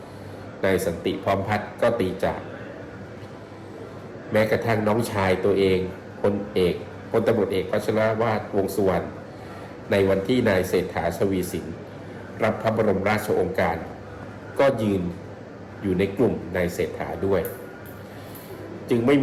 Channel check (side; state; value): both; identical; correlation 1.00